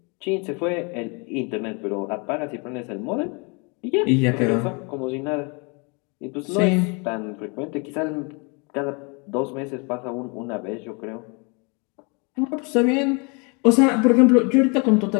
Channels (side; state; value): right; quieter; 32.2 dB